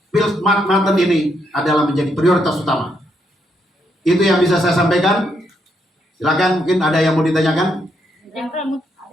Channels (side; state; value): both; normal; correlation 0.77